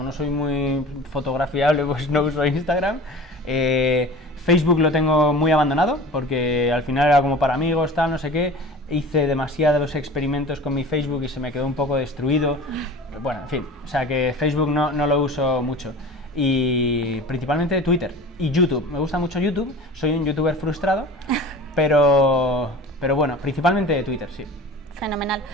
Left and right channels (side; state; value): both; normal; correlation 0.38